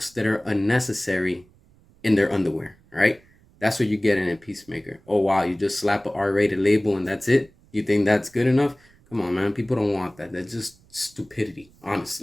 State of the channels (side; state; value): right; noise; rumble, 30 dB below the sound